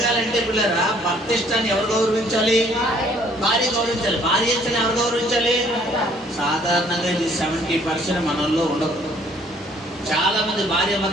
పిల్లరా భర్త ఇష్టాన్ని ఎవరు గౌరవించాలి? భార్య గౌరవించాలి. భార్య ఇష్టాన్ని ఎవరు గౌరవించాలి? సాధారణంగా ఇది 70% మనల్లో ఉండదు. చాలా మంది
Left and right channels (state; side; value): normal; both; correlation 0.61